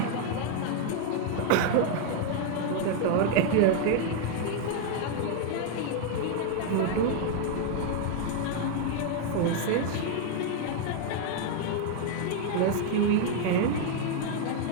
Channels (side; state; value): both; different; correlation 0.00